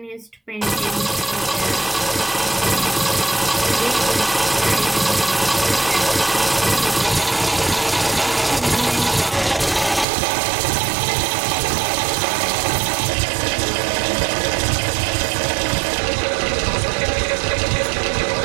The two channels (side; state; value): left; drops out; at 10.1 s